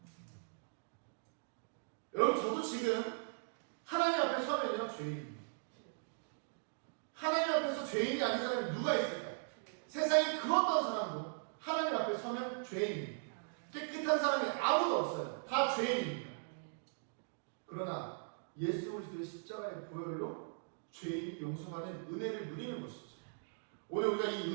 여러분, 저도 지금 하나님 앞에 서면요, 죄인입니다. 하나님 앞에서 죄인이 아닌 사람이 누가 있을까요? 세상에 그 어떤 사람도 하나님 앞에 서면 죄인입니다. 깨끗한 사람이 아무도 없어요. 다 죄인입니다. 그러나 예수 그리스도의 십자가의 보혈로 죄인이 용서받는 은혜를 누리는 것이죠. 오늘 우리가 이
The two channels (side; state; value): left; silent; digital silence